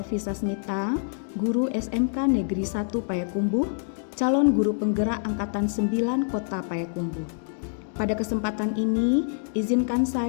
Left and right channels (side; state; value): right; silent; digital silence